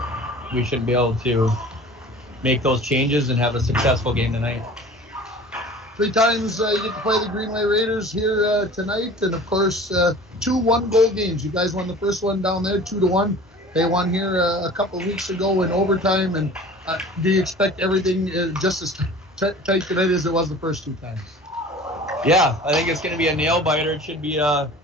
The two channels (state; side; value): normal; both; correlation 0.42